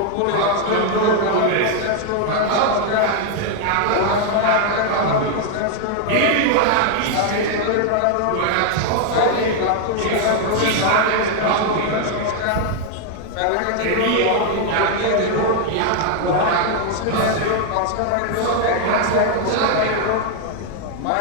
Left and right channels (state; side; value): different; both; correlation 0.00